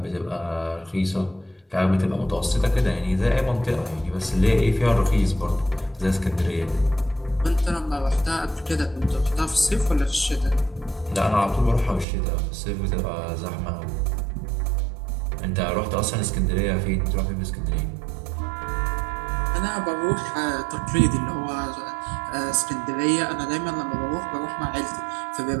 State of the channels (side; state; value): left; drops out; at 12.1 s